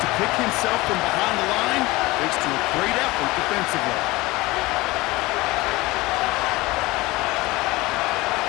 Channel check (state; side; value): quieter; right; 21.0 dB